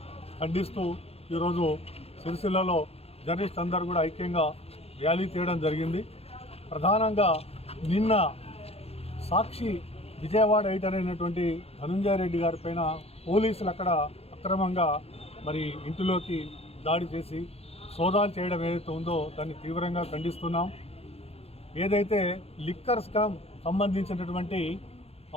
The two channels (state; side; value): late; right; 0.29 ms